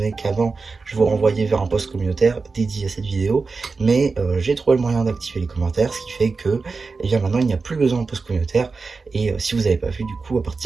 qu'avant, je vous renvoyais vers un post communautaire dédié à cette vidéo, mais j'ai trouvé le moyen d'activer les commentaires, ce qui fait que, eh bien, maintenant, il n'y a plus besoin de post communautaire, et si vous n'avez pas vu, du coup, à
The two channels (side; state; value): left; quieter; 4.3 dB